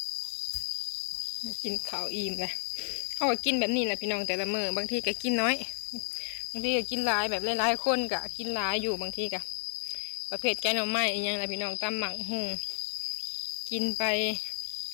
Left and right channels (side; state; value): right; silent; digital silence